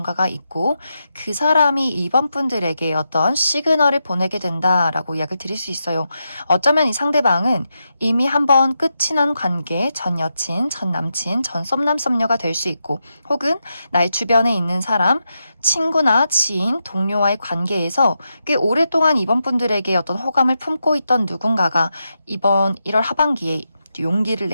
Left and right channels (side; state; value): both; inverted; correlation -0.86